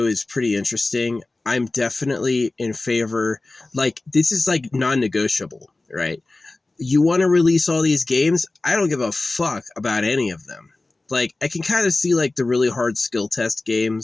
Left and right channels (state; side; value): quieter; right; 3.1 dB